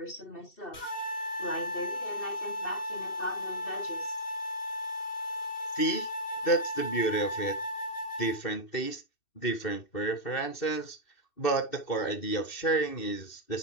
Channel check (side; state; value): right; late; 2.7 ms